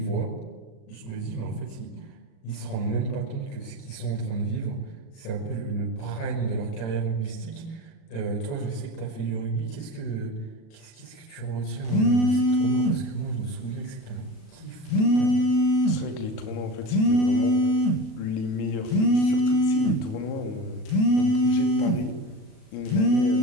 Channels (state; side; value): late; right; 37 ms